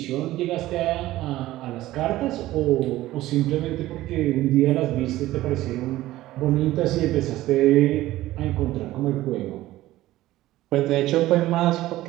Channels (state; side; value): quieter; left; 16.0 dB